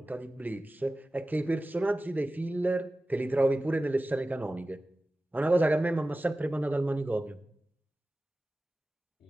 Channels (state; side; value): normal; both; correlation 0.96